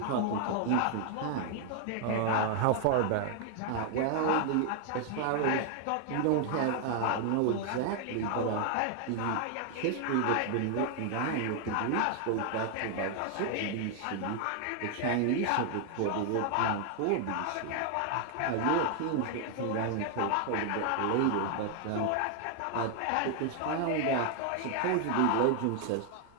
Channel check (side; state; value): both; different; correlation 0.00